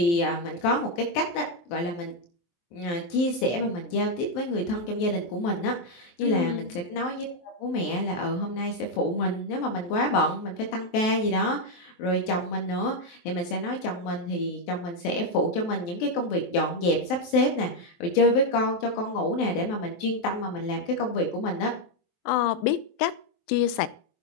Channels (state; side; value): late; right; 23 ms